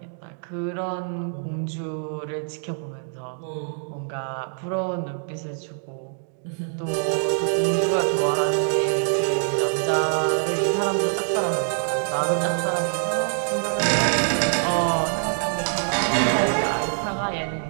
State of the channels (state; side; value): silent; left; digital silence